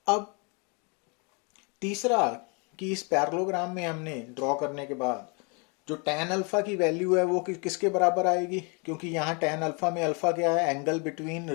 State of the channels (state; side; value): quieter; right; 33.6 dB